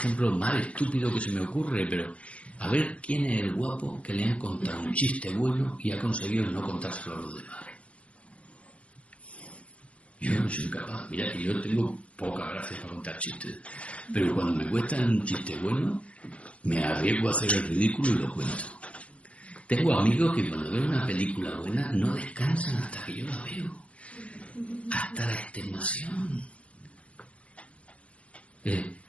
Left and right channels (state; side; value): late; right; 0.062 ms